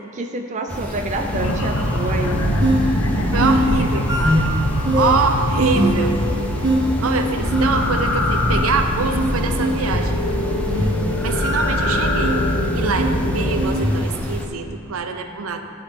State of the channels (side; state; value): both; normal; correlation 0.56